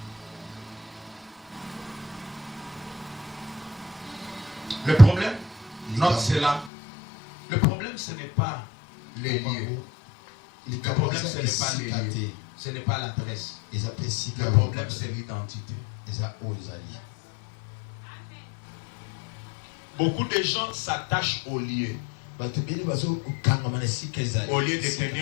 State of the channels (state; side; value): drops out; right; at 6.7 s